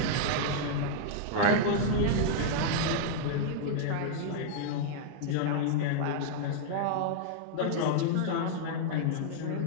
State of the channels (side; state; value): both; different; correlation -0.01